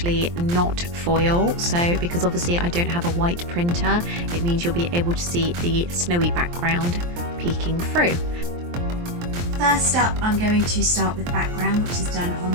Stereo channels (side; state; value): left; late; 23 ms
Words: not foil, so because obviously I don't have a white printer, it means you'll be able to see the snowy background peeking through. First up, I'm going to start with background, which is done